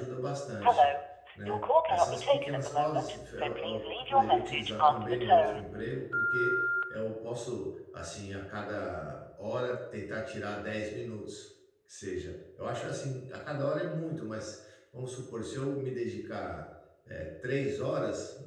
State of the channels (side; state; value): both; identical; correlation 1.00